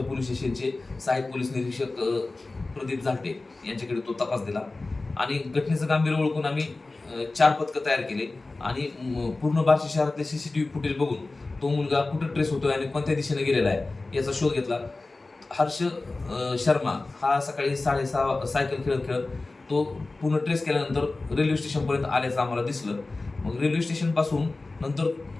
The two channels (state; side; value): quieter; right; 3.3 dB